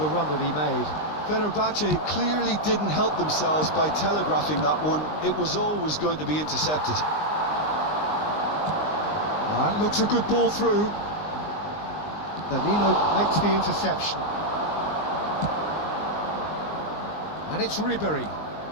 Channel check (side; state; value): right; late; 19 ms